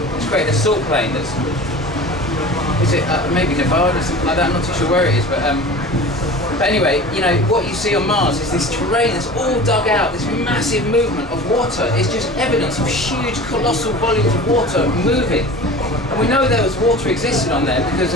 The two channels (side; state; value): both; normal; correlation 0.38